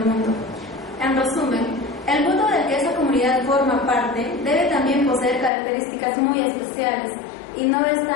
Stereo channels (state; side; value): drops out; right; at 5.5 s